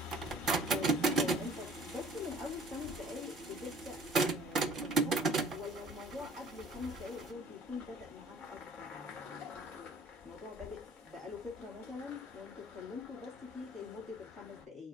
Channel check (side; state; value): both; normal; correlation 0.52